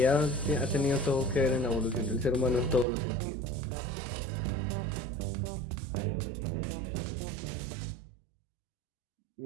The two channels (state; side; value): drops out; left; at 2.9 s